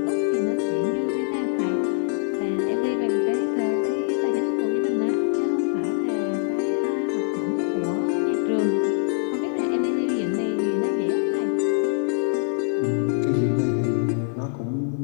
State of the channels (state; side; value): silent; right; digital silence